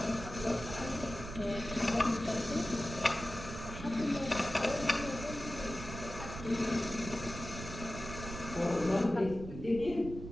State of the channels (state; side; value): noise; right; rumble, 10 dB below the sound